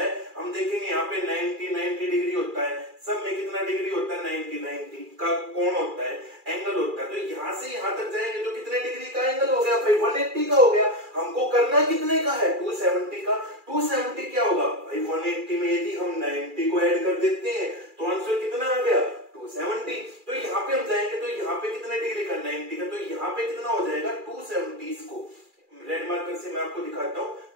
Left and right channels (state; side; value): late; left; 2.4 ms